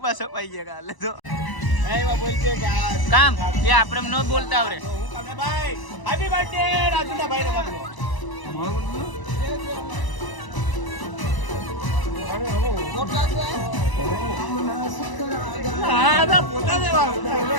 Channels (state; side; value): late; right; 1.0 ms